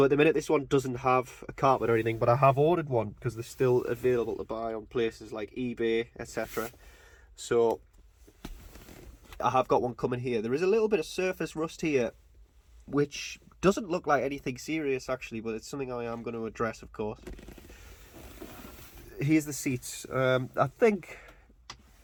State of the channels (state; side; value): identical; both; correlation 1.00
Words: at the minute this one doesn't have a carpet or anything, but I have ordered one because they're still available to buy on places like eBay, etc. So I have got one coming here. There is a little bit of surface rust here, which doesn't look like anything serious actually, but it's something I am going to address, of course. Here's the seats. I think